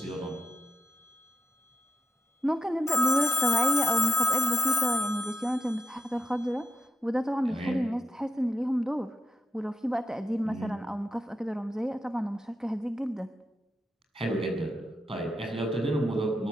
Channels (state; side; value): normal; both; correlation 0.85